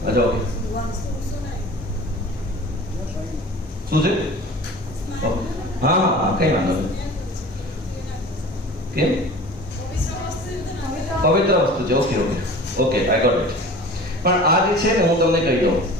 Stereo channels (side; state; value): both; normal; correlation 0.40